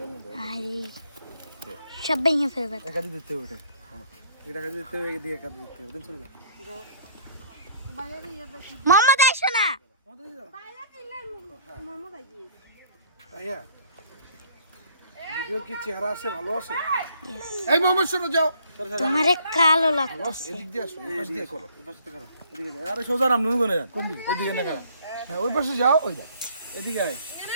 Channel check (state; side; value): inverted; both; correlation -0.58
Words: আরে সব ভেঙে ফেলবে একাদি দিতে হবে এটা কাজে দিতে হবে এদিকে কাজে দিতে হবে চলে যাও মোহাম্মদ আইসো না ভাইয়া ভিডিও কি চেহারা আছে ভালো আছে এই মোহাম্মদ শোনো যাও তোমারে কালো লাগতেছে এদিক দিয়ে আসো এই পাশ দিয়ে করো এই পাশে করো এদিকে যাও আরে সোজা নাম নুন গনে যান কোন দিকে এদিকে না কারণ হ্যাঁ ওই পাশে যাও ওই দেখ এদিকে আয়